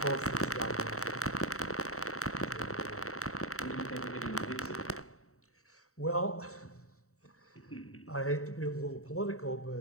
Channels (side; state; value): right; late; 0.64 ms